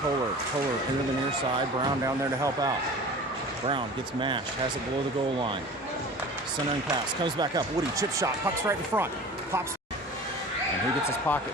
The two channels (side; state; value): both; normal; correlation 0.39